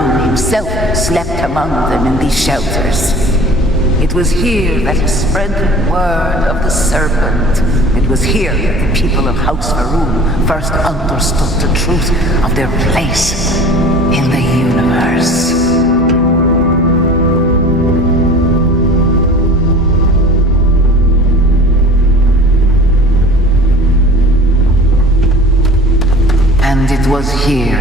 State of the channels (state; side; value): normal; both; correlation 0.42